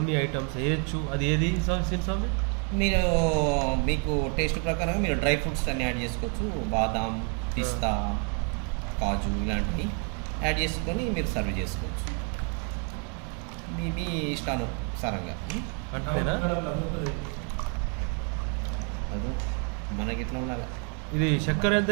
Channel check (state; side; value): quieter; left; 39.6 dB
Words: ఐటమ్స్ వేయచ్చు. అది ఏది సీను స్వామి? మీరు మీకు టేస్ట్ ప్రకారంగా మీరు డ్రై ఫ్రూట్స్ అన్నీ యాడ్ చేసుకోవచ్చు. బాదాం, పిస్తా, కాజు ఇలాంటివి యాడ్ చేసుకొని మీరు సర్వ్ చేసుకోవచ్చు. మీ ఇష్టానుసారంగా. అంతేనా? అది మనకి ఎట్లా ఉండాలి. ఇది చక్కెర ఎంత